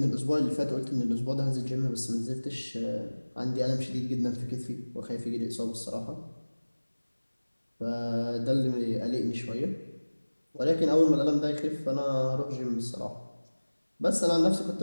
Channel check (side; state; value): both; inverted; correlation -1.00